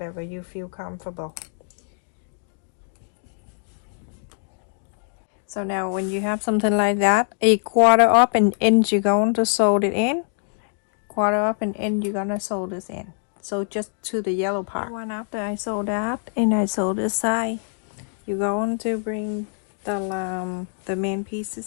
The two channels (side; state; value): right; silent; digital silence